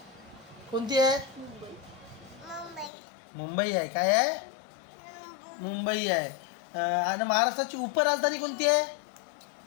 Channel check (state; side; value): drops out; right; at 2.9 s